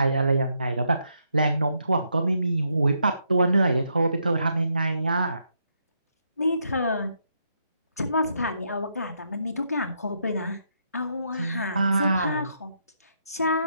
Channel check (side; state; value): both; inverted; correlation -0.78